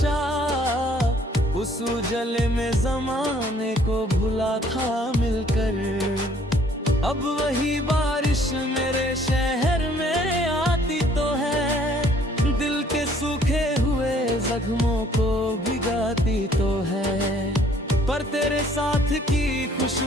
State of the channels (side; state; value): both; normal; correlation 0.60